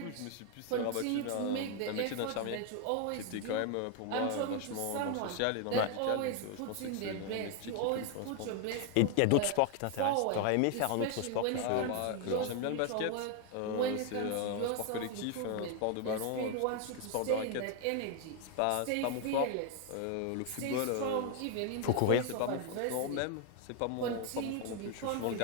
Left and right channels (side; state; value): both; different; correlation 0.00